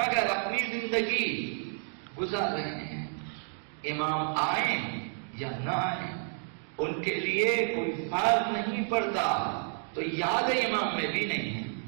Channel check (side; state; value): left; silent; 57 dB below the other